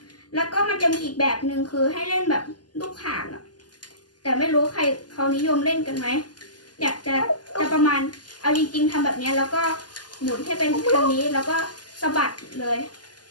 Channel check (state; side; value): late; right; 0.70 ms